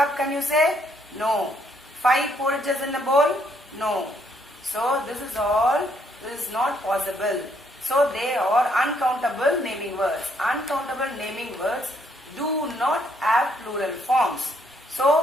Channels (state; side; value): normal; both; correlation 0.70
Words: Can you say? No. 5 porridges in a bowl? No. So this is all, this is not possible. So they are uncountable naming words. Uncountable naming words do not have plural forms.